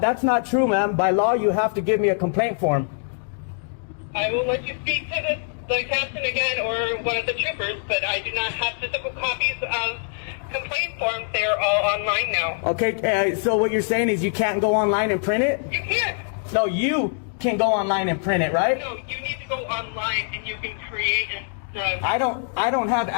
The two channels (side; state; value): right; silent; digital silence